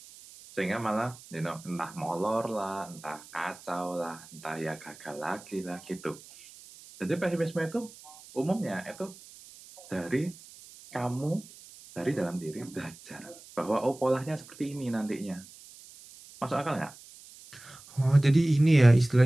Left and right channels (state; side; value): noise; right; hiss, 20 dB below the sound